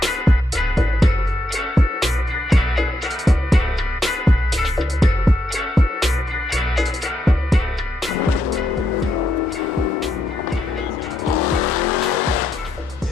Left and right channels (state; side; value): normal; both; correlation 0.80